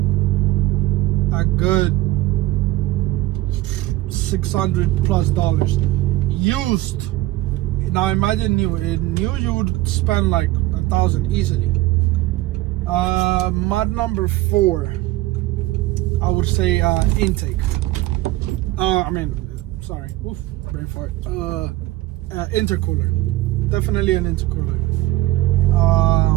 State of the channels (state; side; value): quieter; left; 17.4 dB